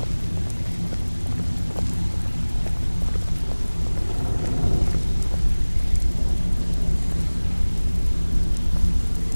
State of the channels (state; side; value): inverted; both; correlation -1.00